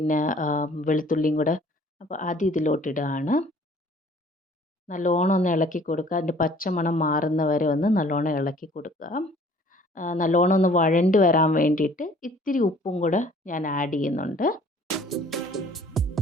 വെളുത്തുള്ളിയും കൂടെ, അപ്പോൾ അത് ഇതിലോട്ടിടുകയാണ്. നല്ലോണം ഒന്ന് ഇളക്കി കൊടുക്കുക. അതിൻ്റെ പച്ചമണം മാറുന്ന വരെ ഒന്ന് നല്ലോണം ഇളക്കി കൊടുക്കുക. നല്ലോണം ഒന്ന് വഴണ്ട് വരാൻ വേണ്ടിയിട്ട് ഇത്തിരി ഉപ്പും കൂടെ ഞാൻ ആഡ് ചെയ്യുന്നുണ്ട്.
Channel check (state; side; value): normal; both; correlation 0.54